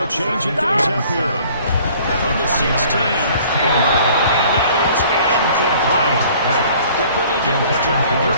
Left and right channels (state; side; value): inverted; both; correlation -0.53